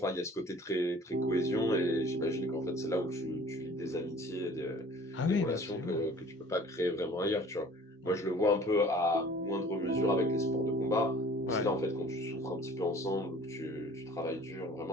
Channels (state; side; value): normal; both; correlation 0.48